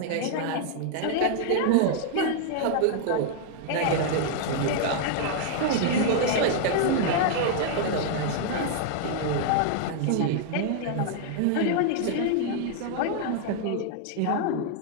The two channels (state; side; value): different; both; correlation 0.00